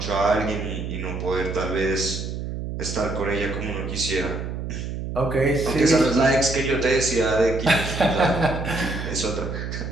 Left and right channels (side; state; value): right; noise; hum, 5 dB below the sound